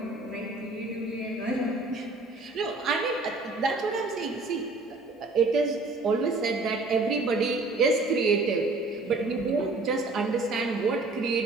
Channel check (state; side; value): quieter; left; 3.3 dB